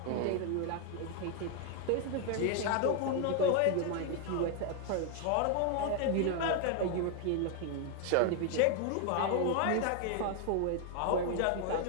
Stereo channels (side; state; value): both; different; correlation 0.00